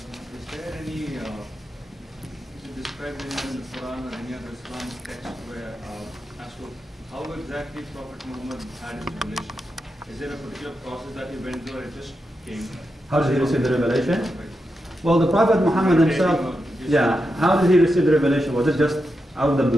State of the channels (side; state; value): both; normal; correlation 0.87